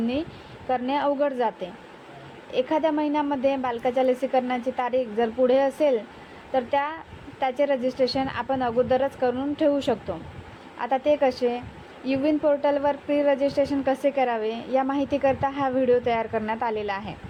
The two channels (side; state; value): both; identical; correlation 1.00